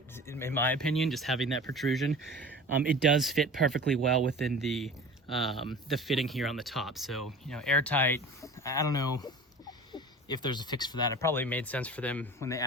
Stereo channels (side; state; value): both; normal; correlation 0.38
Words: in my opinion, just having that protrusion, it does fit perfectly well within the fitting here on the top. So, airtight. I don't know if there's a fix for that. It probably made sense for them when they